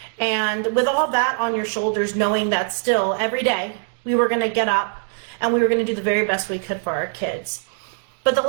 And with all that on your shoulders, knowing that still every day we were going to get up and we were going to do the very best we could for our kids. But the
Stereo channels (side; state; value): left; silent; digital silence